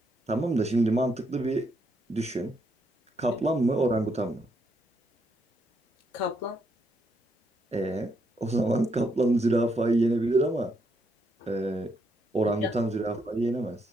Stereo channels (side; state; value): both; normal; correlation 0.77